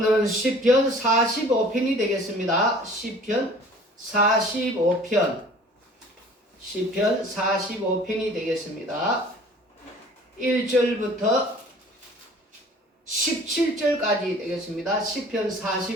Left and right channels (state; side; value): normal; both; correlation 0.49